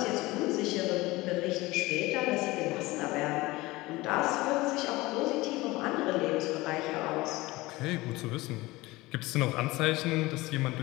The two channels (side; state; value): right; quieter; 20.3 dB